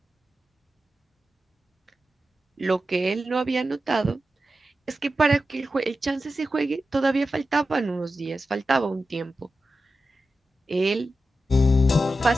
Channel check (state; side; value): normal; both; correlation 0.92